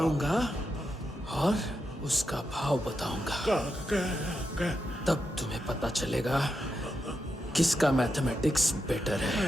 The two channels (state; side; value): normal; both; correlation 0.86